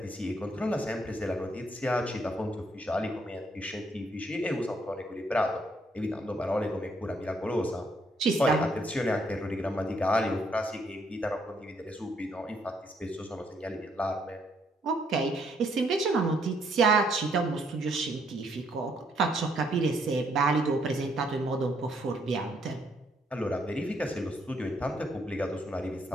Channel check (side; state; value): both; normal; correlation 0.71